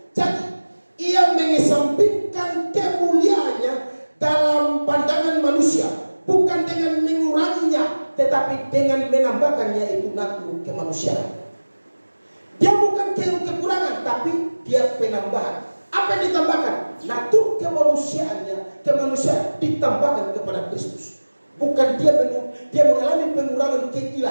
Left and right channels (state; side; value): inverted; both; correlation -1.00